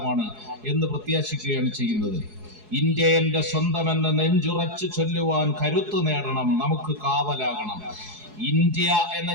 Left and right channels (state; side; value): late; left; 4.7 ms